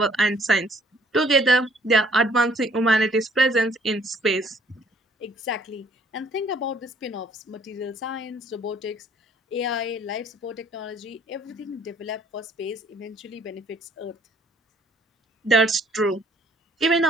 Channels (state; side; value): normal; both; correlation 0.61